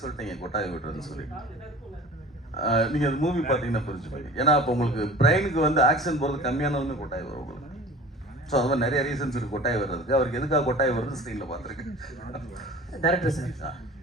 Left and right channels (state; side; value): normal; both; correlation 0.41